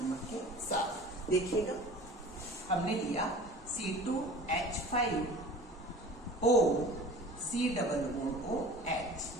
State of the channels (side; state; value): both; normal; correlation 0.42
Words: के साथ। देखिएगा, हमने लिया C2H5O C≡OH।